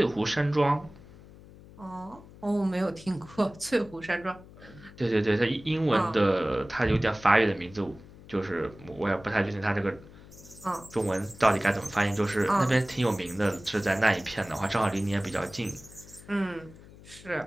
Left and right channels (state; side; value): noise; left; hum, 20 dB below the sound